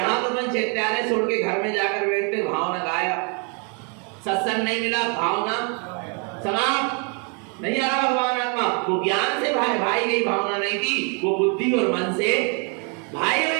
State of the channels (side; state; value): left; quieter; 36.7 dB